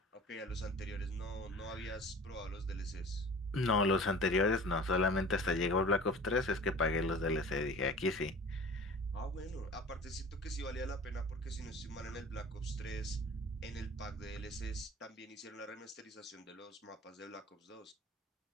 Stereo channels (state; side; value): normal; both; correlation 0.42